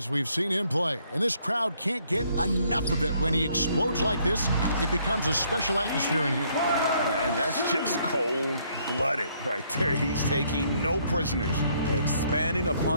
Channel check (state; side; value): inverted; both; correlation -0.68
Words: we've seen him play, and this crowd can't get enough of it. When he explodes like this, it becomes a special atmosphere in here. And that's just cold-blooded right there. He's taking no prisoners. Expanding